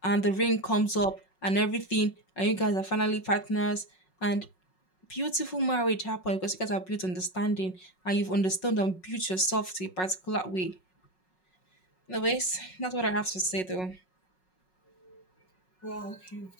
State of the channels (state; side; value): late; right; 5.4 ms